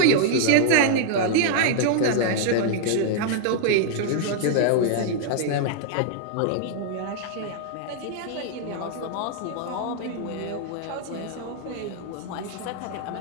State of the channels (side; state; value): both; different; correlation -0.01